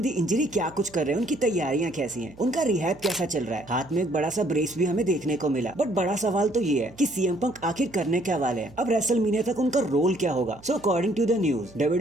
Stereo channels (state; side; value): noise; right; hum, 23 dB below the sound